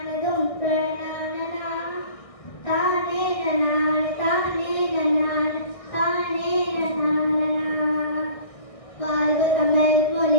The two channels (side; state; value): right; late; 1.6 ms